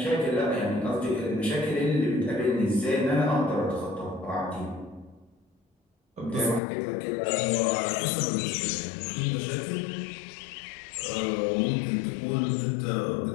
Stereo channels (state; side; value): drops out; right; at 6.6 s